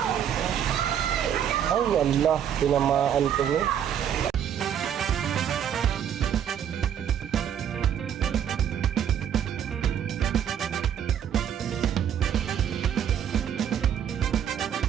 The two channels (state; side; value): quieter; left; 9.2 dB